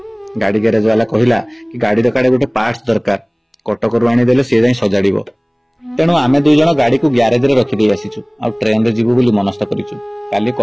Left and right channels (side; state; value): both; identical; correlation 1.00